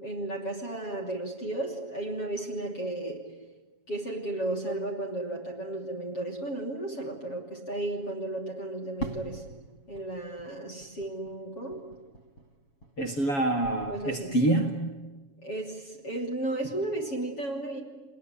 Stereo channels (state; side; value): late; right; 7.2 ms